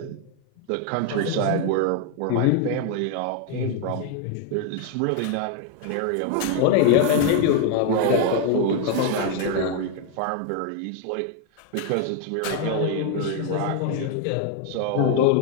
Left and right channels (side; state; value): both; different; correlation 0.00